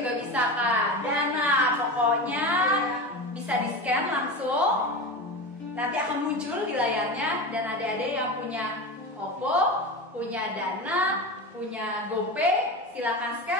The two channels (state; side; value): normal; both; correlation 0.25